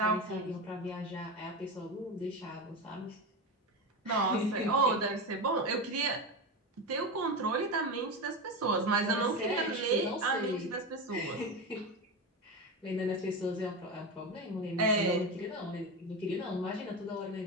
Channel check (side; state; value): both; normal; correlation 0.19